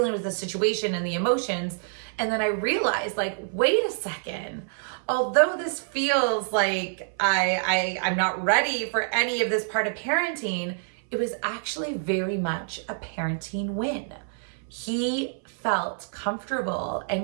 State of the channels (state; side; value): silent; left; 60 dB below the other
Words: with the situation and the emotions. And then I realized, wait a second, although this feels like I'm not ready for any of this part of parenting, it was actually very much a parenting win. He felt comfortable